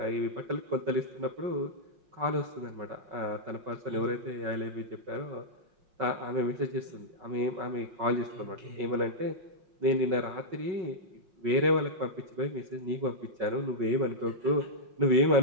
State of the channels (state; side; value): late; left; 5.5 ms